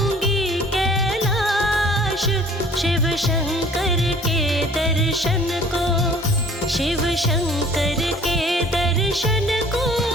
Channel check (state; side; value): normal; both; correlation 0.52